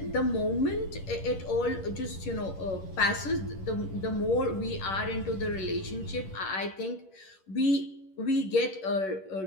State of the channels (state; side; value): late; right; 10 ms